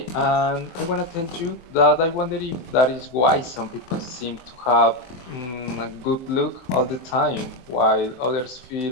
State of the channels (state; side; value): late; right; 23 ms